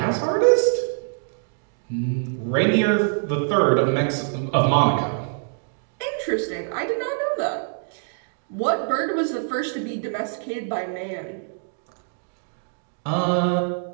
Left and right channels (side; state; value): left; silent; digital silence